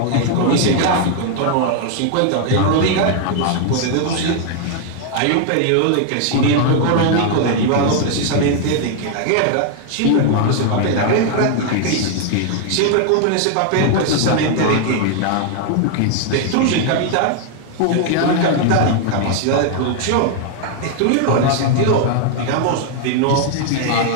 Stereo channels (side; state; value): both; different; correlation 0.00